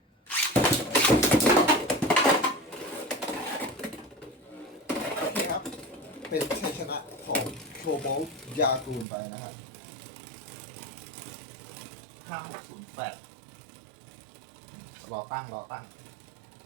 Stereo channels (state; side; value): drops out; left; at 9.1 s